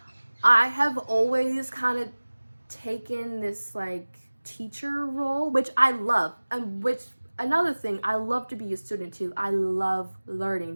I have always kind of taken this like teacher role, which I love, and which, another thing, I love to be a student too. I love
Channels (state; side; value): inverted; both; correlation -1.00